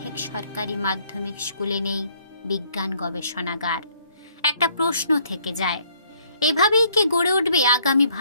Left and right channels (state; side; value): inverted; both; correlation -0.65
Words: সরকারি মাধ্যমিক স্কুলে নেই বিজ্ঞান গবেষণাগার। একটা প্রশ্ন থেকে যায়, এভাবেই কি গড়ে উঠবে আগামী